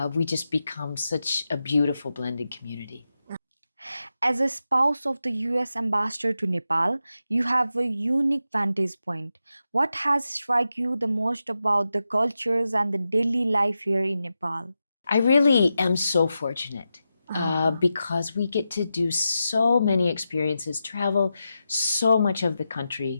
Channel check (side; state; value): both; inverted; correlation -0.89